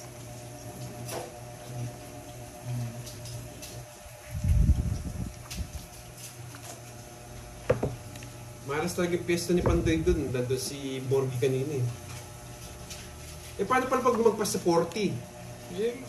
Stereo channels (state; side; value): identical; both; correlation 1.00